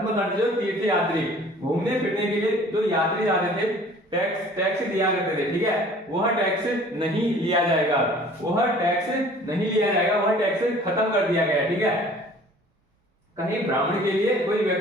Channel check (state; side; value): normal; both; correlation 0.50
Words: जो तीर्थ यात्री घूमने फिरने के लिए जो यात्री जाते थे, टैक्स दिया करते थे, ठीक है, वह टैक्स नहीं लिया जाएगा, वह टैक्स खत्म कर दिया गया, ठीक है। कहीं ब्राह्मण के लिए कोई